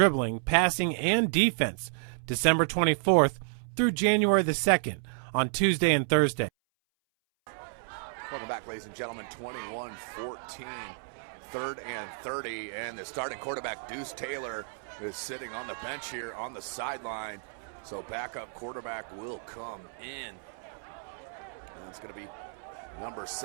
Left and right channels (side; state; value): left; silent; 57 dB below the other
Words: passing, and defense December 24th through January the 2nd on Tuesday and Thursday. Welcome back, ladies and gentlemen. 21-14, 3rd and 30, and the starting quarterback, Deuce Taylor, is sitting on the bench here on the sideline. So backup quarterback will come in. And it's going to be number